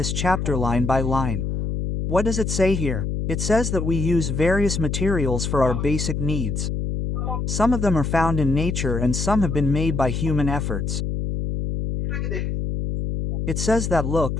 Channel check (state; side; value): noise; left; hum, 2 dB below the sound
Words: chapter line by line. What does it say here? It says that we use various materials for our basic needs. Some of them are found in nature and some have been made by human efforts. It says that